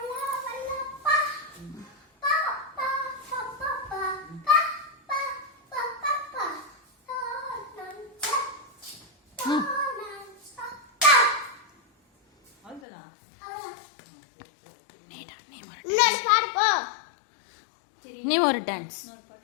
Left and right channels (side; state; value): right; drops out; at 12.8 s